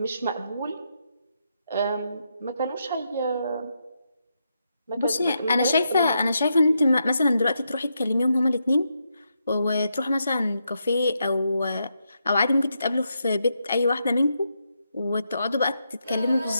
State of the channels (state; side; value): inverted; both; correlation -0.82